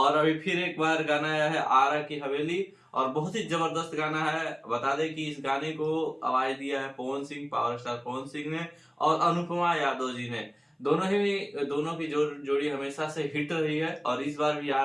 अभी फिर एक बार गाना आया है आरा की हवेली और बहुत ही जबरदस्त गाना है। बता दें कि इस गाने को आवाज दिया है पवन सिंह, पावर स्टार पवन सिंह ने और अनुपमा यादव जी ने। दोनों की जोड़ी हमेशा से हिट रही है और इस बार भी आ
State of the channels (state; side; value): identical; both; correlation 1.00